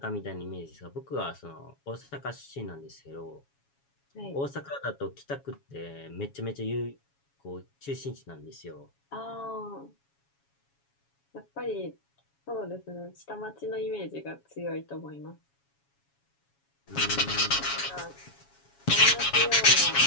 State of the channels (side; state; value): right; late; 7.2 ms